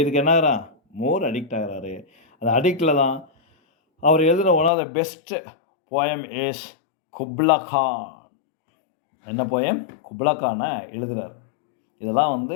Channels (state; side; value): drops out; right; at 4.7 s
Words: என்ன ஆகிறான், மோர் அடிக்ட் ஆகிறாரு. அந்த அடிக்டில் தான் அவர் எழுதின one of the best poem is Kubla Khan. என்ன போயம், குப்லா கானை எழுதுகிறார். இதெல்லாம் வந்து